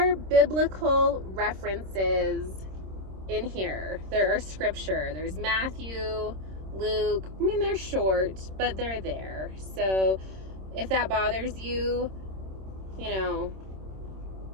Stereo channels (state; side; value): late; left; 26 ms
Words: biblical references in here. There are scripture. There's Matthew, Luke. I mean, they're short, but they're there. So if that bothers you, you know,